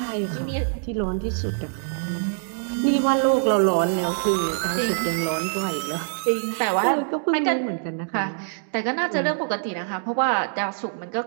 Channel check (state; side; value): silent; left; digital silence